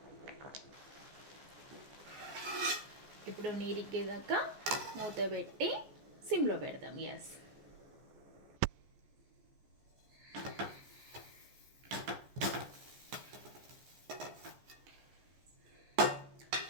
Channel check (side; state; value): left; late; 14 ms